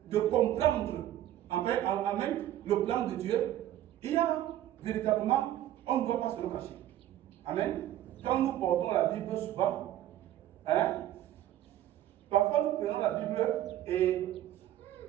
de comprendre, amen, le plan de Dieu. Il y a véritablement, on ne doit pas se le cacher. Amen. Quand nous portons la Bible souvent, parfois nous prenons la Bible et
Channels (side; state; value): left; quieter; 12.8 dB